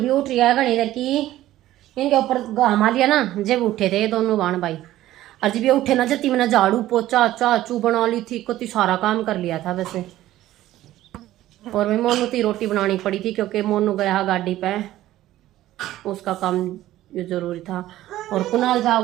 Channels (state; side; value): quieter; left; 14.6 dB